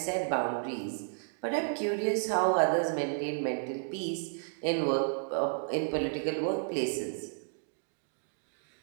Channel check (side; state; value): left; silent; digital silence